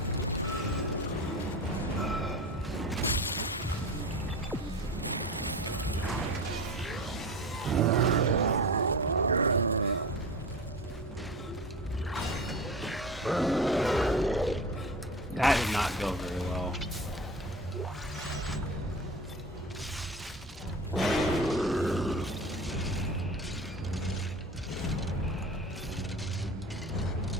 That did not go very well.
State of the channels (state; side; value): normal; both; correlation 0.32